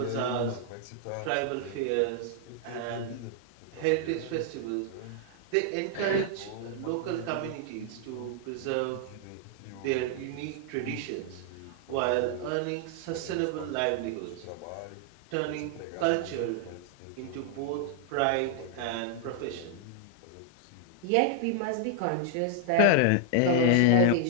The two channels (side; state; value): both; different; correlation 0.00